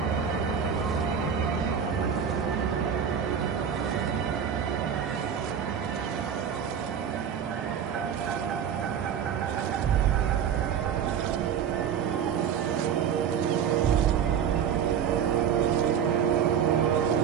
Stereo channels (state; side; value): quieter; left; 8.1 dB